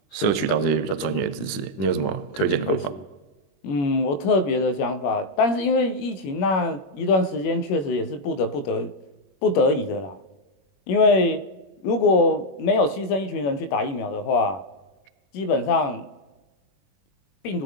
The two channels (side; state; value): right; late; 21 ms